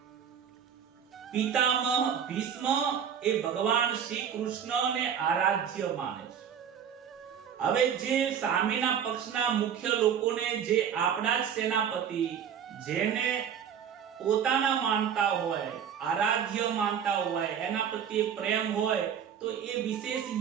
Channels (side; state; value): left; quieter; 8.2 dB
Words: પિતામહ ભીષ્મ એ ભગવાન શ્રી કૃષ્ણને આરાધ્ય માને છે. હવે જે સામેના પક્ષના મુખ્ય લોકોને, જે આપણા જ સેનાપતિ, જેને પોતાના માનતા હોય, આરાધ્ય માનતા હોય, એના પ્રત્યે પ્રેમ હોય, તો એ વિશેષ